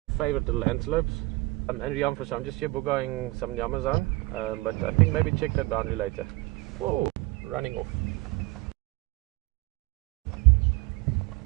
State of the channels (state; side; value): quieter; left; 22.2 dB